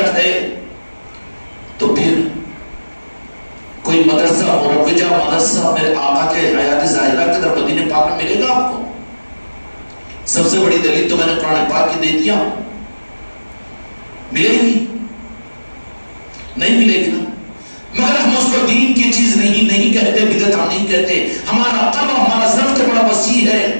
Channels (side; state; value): both; inverted; correlation -1.00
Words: ہے تو پھر کوئی مدرسہ مروجہ مدرسہ میرے آقا کے حیات ظاہرہ کے در مدینہ پاک میں ملے گا آپ کو؟ سب سے بڑی دلیل تو میں نے قرآن پاک کی دے دیا، ملے گی نہیں ملے گی نا، مگر ہم اس کو دین کی چیز نہیں کہتے، بدعت ہم نہیں کہتے، ہمارا قلب ہمارا ضبط بڑا وسیع ہے۔